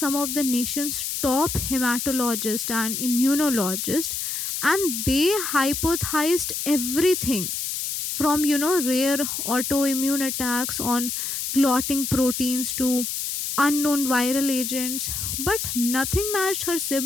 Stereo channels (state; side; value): noise; left; hiss, 3 dB below the sound